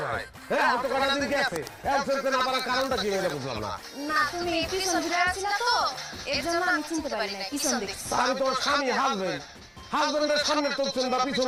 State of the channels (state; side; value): identical; both; correlation 1.00